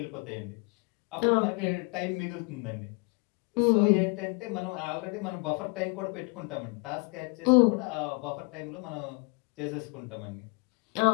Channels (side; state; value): right; quieter; 31.4 dB